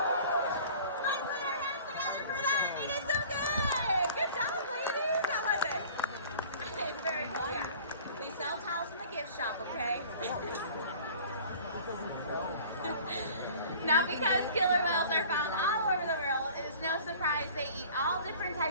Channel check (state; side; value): inverted; both; correlation -0.46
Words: Shop, okay? Now, because killer whales are found all over the world, it is no surprise they eat all different